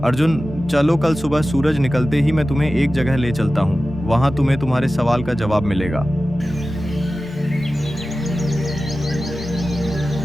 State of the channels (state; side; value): normal; both; correlation 0.95